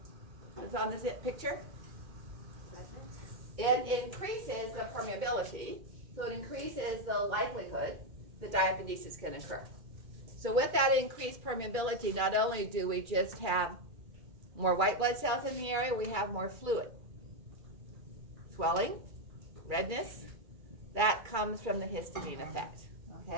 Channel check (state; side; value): late; left; 2.3 ms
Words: It's on this picture. It increases the permeability, so it increases the likelihood that diapedesis can occur. So with that increased permeability, not only do we just have more white blood cells in the area, we have more fluid. Swelling, redness, that comes from the histamine effect,